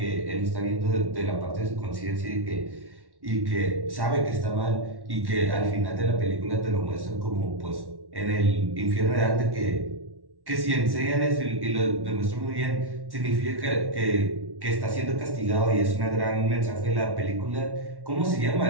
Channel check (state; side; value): late; left; 1.1 ms